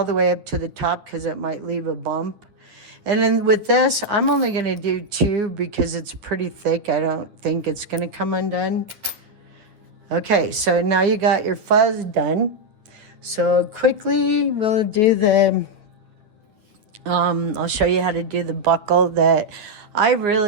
the way up to the top because it might leave a bump. And then with this, I'm only going to do 2 because it's pretty thick. I don't think it's going to come undone. Okay, so now you got your fuzz done. So quickly, we'll do the, I'll show you how to do the buckle that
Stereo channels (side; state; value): left; late; 9.3 ms